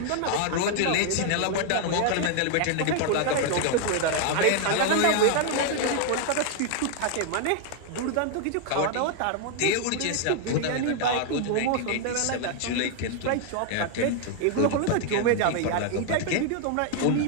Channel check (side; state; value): both; different; correlation 0.00